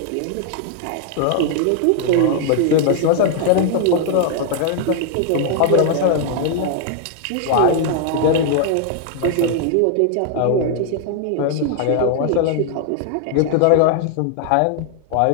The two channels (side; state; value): both; different; correlation 0.00